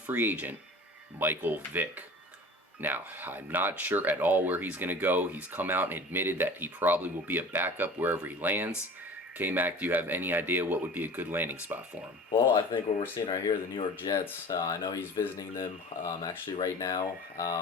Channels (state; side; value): normal; both; correlation 0.39